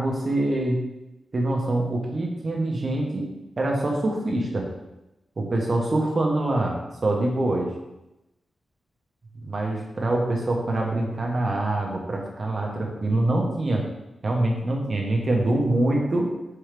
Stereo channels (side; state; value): both; normal; correlation 0.91